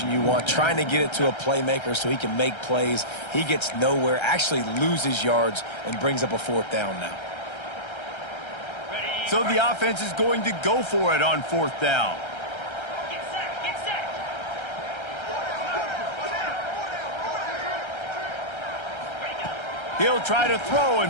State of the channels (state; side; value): late; right; 1.3 ms